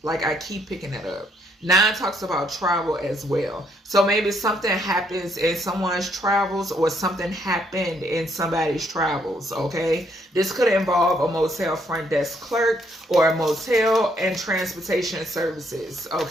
Like I keep picking it up. 9 talks about travel as well. So maybe something happens in someone's travels, or something happened in somebody's travels, okay? This could involve a motel front desk clerk, or a motel and transportation services,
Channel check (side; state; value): both; normal; correlation 0.70